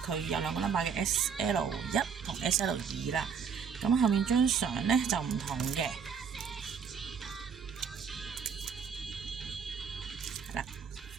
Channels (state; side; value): quieter; left; 6.6 dB